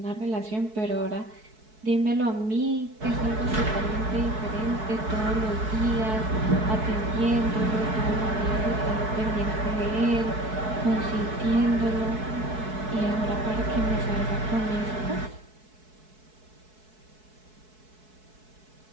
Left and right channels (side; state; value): left; late; 4.6 ms